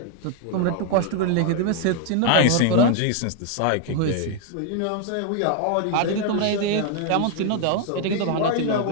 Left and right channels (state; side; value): different; both; correlation 0.00